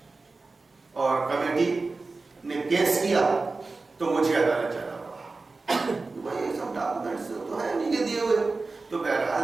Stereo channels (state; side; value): quieter; left; 3.7 dB